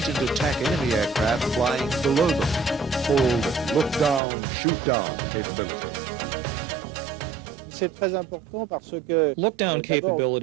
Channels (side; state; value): left; drops out; at 4.2 s